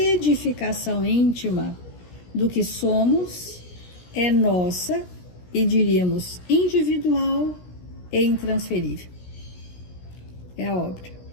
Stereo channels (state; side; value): late; right; 17 ms